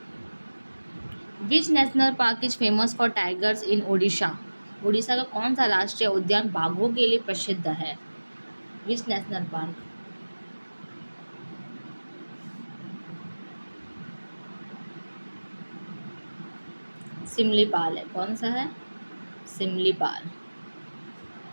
Which national park is famous for tigers इन ओडिशा? उड़ीसा का कौन सा राष्ट्रीय उद्यान बाघों के लिए प्रसिद्ध है? Which national park? सिमलीपाल है. कौन सा है? Similipal.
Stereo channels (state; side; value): inverted; both; correlation -1.00